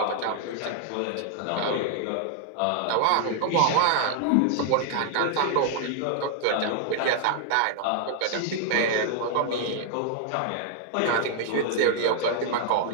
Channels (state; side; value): different; both; correlation 0.00